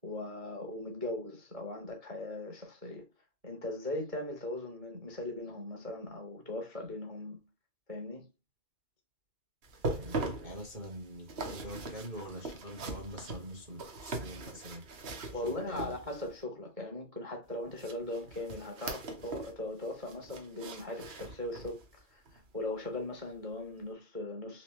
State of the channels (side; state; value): left; late; 2.4 ms